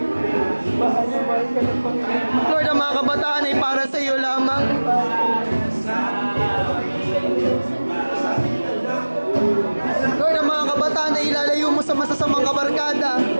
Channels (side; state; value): both; inverted; correlation -1.00